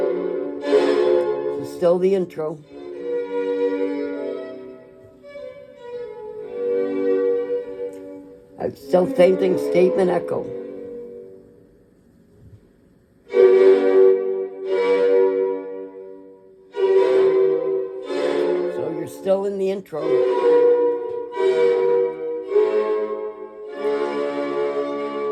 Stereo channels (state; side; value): identical; both; correlation 1.00